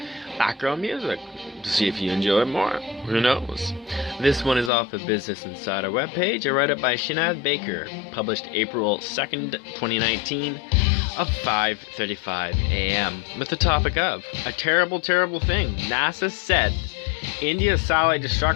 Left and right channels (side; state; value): right; drops out; at 4.7 s